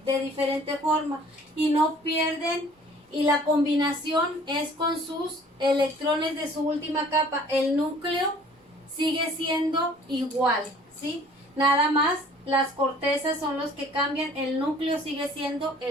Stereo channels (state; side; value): normal; both; correlation 0.53